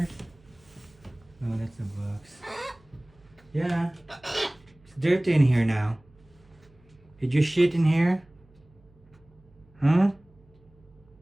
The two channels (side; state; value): right; noise; hum, 30 dB below the sound